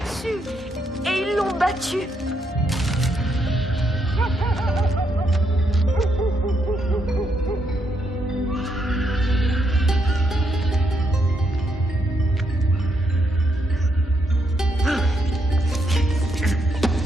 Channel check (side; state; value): both; normal; correlation 0.78